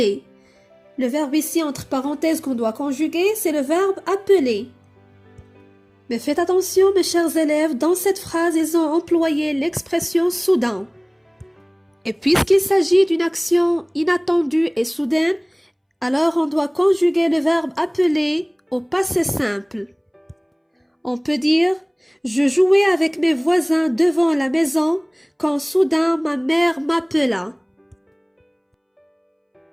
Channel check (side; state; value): both; identical; correlation 1.00